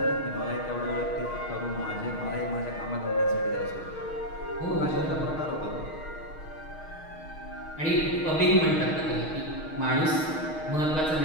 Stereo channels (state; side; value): late; right; 6.4 ms